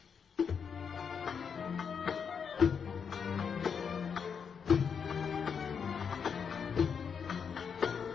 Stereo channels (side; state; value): right; quieter; 6.6 dB